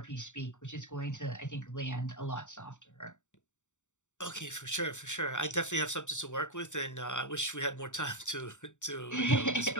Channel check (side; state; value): right; late; 0.85 ms